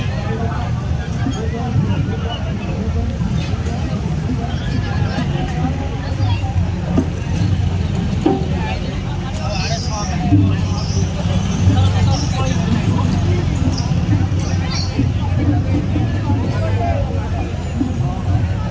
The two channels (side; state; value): both; identical; correlation 1.00